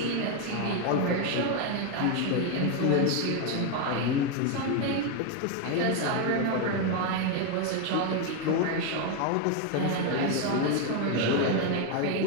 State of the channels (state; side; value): different; both; correlation 0.02